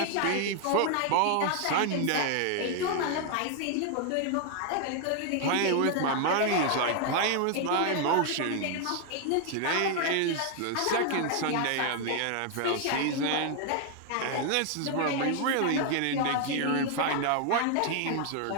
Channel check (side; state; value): both; different; correlation 0.00